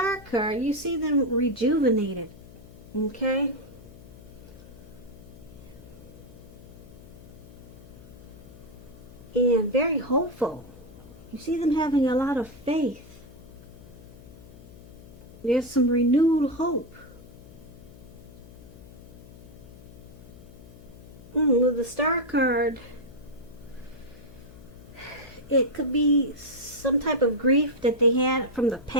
card, you see them rejuvenated, okay? And very hopeful. You see them having a lot of faith. There's some renewed hope. With the Star card, it could be some type of grief that they had from the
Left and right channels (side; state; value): left; noise; hum, 18 dB below the sound